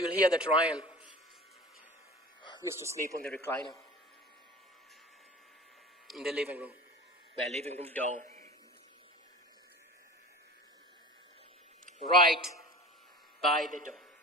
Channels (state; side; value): normal; both; correlation 0.36